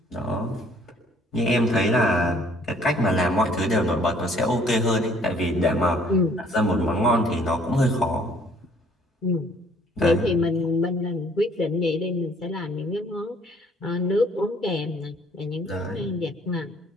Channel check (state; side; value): normal; both; correlation 0.60